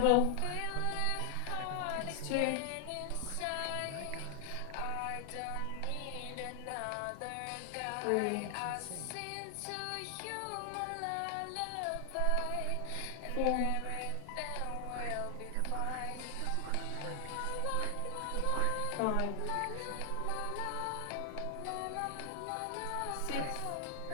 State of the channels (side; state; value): both; different; correlation 0.00